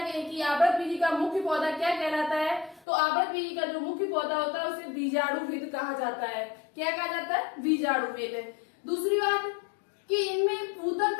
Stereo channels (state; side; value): drops out; right; at 2.9 s